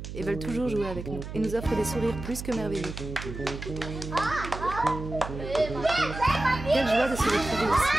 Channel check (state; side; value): noise; right; hum, 9 dB below the sound